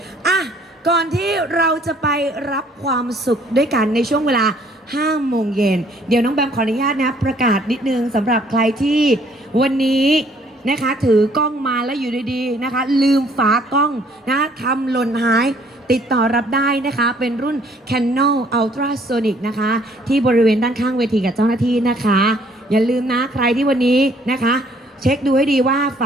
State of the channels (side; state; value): both; normal; correlation 0.62